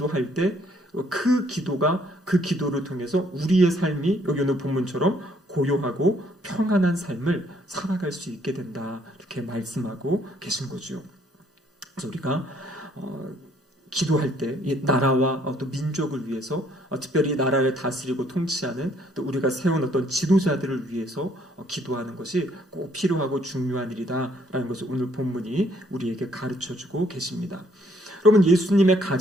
때 그 기도가, 그 기도를 통해서 우리의 삶이 여기 오늘 본문처럼 고요하고 평안한 삶을 살아갈 수 있게 된다, 이렇게 말씀하고 계신 거죠. 그래서 우리가 기도할 때 이 나라와 또 민족을 위해서, 특별히 나라를 다스리고 통치하는 또 우리가 세운 어떤 지도자들을 위해서 기도하는 것이 꼭 필요하고 중요한 일이다라는 것을 오늘 본문이 우리에게 가르쳐주고 계십니다. 여러분, 예수님의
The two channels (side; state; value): both; normal; correlation 0.65